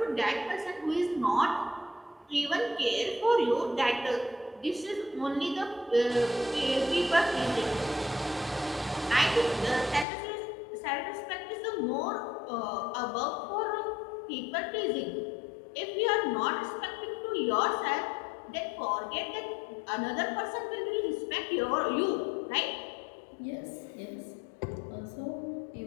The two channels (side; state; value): right; drops out; at 10.1 s